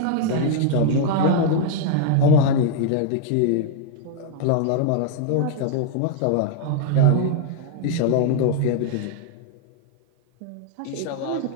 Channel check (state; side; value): different; both; correlation 0.00